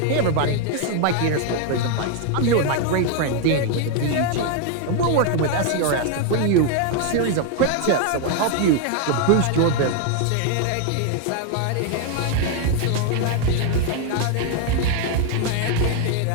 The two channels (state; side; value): different; both; correlation 0.00